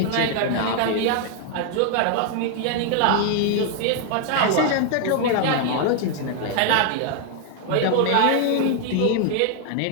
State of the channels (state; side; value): different; both; correlation 0.00